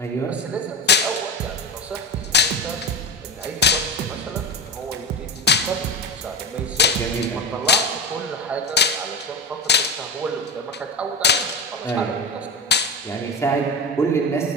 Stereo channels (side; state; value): both; normal; correlation 0.19